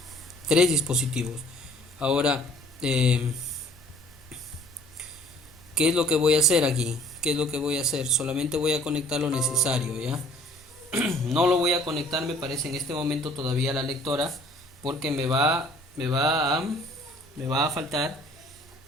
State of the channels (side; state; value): both; normal; correlation 0.55